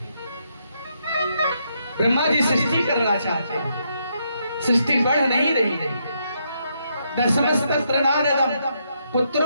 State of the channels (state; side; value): inverted; both; correlation -0.77